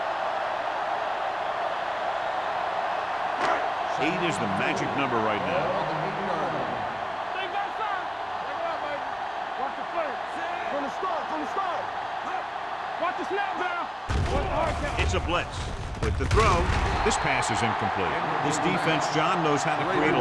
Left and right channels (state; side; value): identical; both; correlation 1.00